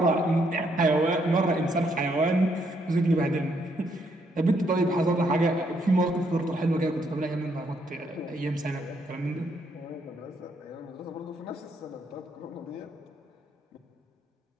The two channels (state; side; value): normal; both; correlation 0.73